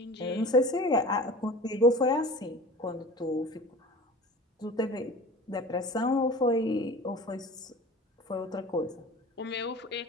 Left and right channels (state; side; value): normal; both; correlation 0.39